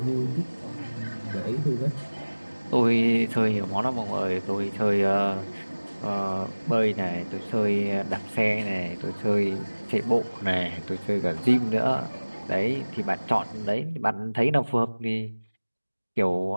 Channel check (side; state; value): both; inverted; correlation -1.00